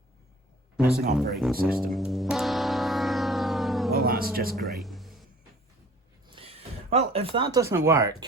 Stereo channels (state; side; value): normal; both; correlation 0.50